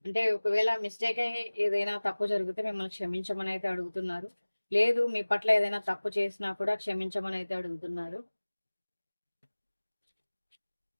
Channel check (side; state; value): both; inverted; correlation -1.00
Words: అంటే ఒకవేళ మిస్టేక్ అయ్యి ఏదైనా తప్పు జరిగితే మిమ్మల్ని క్షమించమని అయితే అడుగుతున్నారు. లేదు మీ పట్ల ఏదైనా తప్పు చేసినా కూడా క్షమించమని అయితే అడుగుతున్నారు.